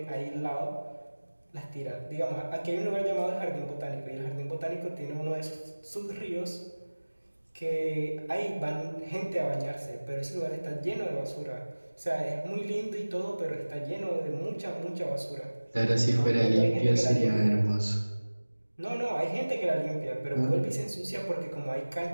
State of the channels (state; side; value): inverted; both; correlation -1.00